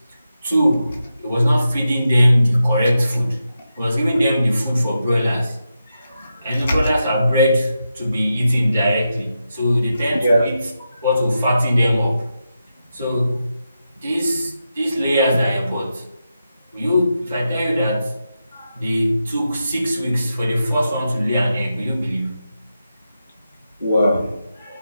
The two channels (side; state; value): both; inverted; correlation -0.88